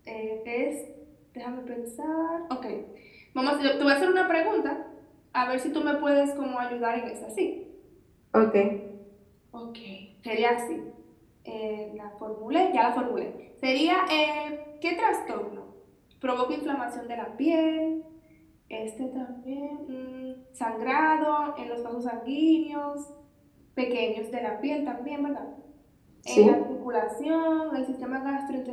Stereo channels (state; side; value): identical; both; correlation 1.00